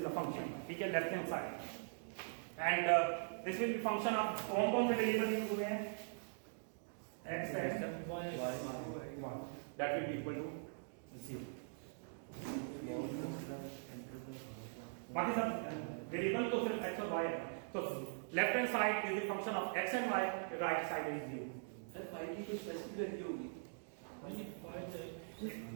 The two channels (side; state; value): left; silent; digital silence